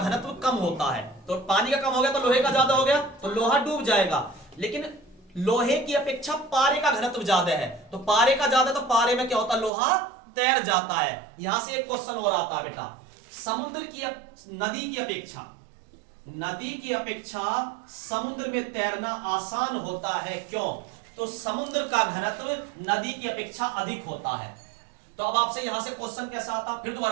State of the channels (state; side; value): drops out; left; at 9.7 s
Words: कम होता है, तो पानी का कम हो गया तो लोहे का ज्यादा हो गया, तो लोहा डूब जाएगा। लेकिन लोहे की अपेक्षा पारे का घनत्व ज्यादा है, तो पारे का ज्यादा, तो पारे में क्या होता है, लोहा तैर जाता है। यहां से एक क्वेश्चन और आता है बेटा, समुद्र की नदी की अपेक्षा समुद्र में तैरना आसान होता है, क्यों? तो समुद्र का घनत्व नदी की अपेक्षा अधिक होता है। तो अब आपसे यहां से क्वेश्चन कैसा आता, फिर